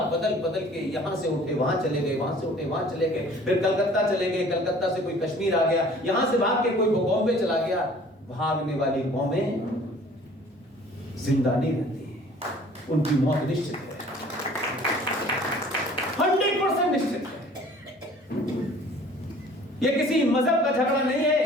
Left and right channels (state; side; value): normal; both; correlation 0.51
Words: बदल बदल के यहां से उठे वहां चले गए, वहां से उठे वहां चले गए, फिर कलकत्ता चले गए, कलकत्ता से कोई कश्मीर आ गया, यहां से भाग के कोई बॉम्बे चला गया। भागने वाली कौमें जिंदा नहीं रहती, उनकी मौत निश्चित है, 100% निश्चित है। ये किसी मजहब का झगड़ा नहीं है,